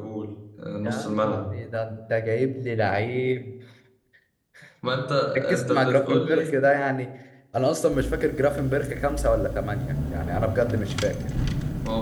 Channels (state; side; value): identical; both; correlation 1.00